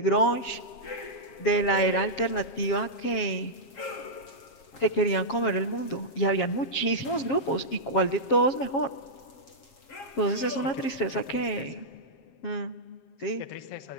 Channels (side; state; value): right; late; 7.3 ms